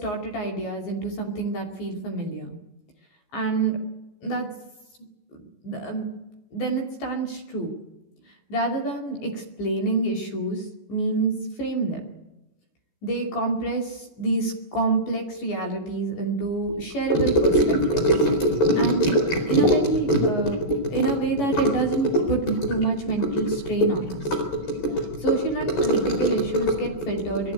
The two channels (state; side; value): late; right; 16 ms